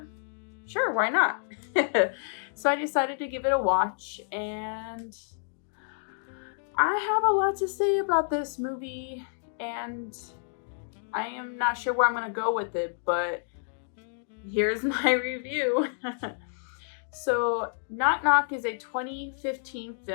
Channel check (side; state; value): right; silent; digital silence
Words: Sure, why not? So I decided to give it a watch. And I have a lot to say about this movie. And I am not sure where I'm going to go with it. But here's my review. So, Knock Knock is a 2015